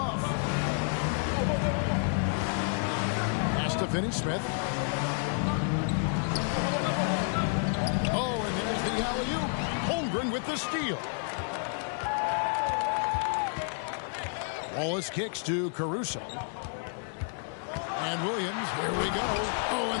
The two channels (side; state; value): right; silent; 58 dB below the other